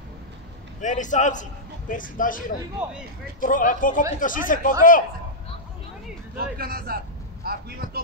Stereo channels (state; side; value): normal; both; correlation -0.09